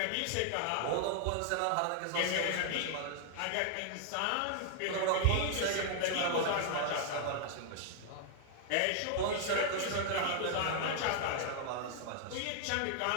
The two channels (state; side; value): different; both; correlation 0.00